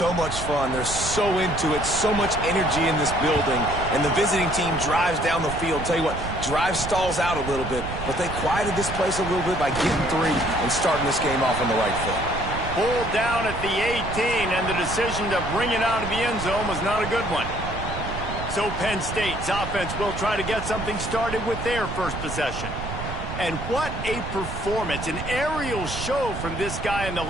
much fun. They're so into it, so much energy in this building. And the visiting team drives down the field. Tell you what, drive stalls out a little bit, but they quieted this place a little bit by getting three and starting this game off on the right foot. Pulled down at the 18, and the decision to bring it out of the end zone was not a good one. So Penn State's offense will try to get something started with their first possession. And what a performance, an aerial show from this guy in the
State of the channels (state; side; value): noise; right; rumble, 7 dB below the sound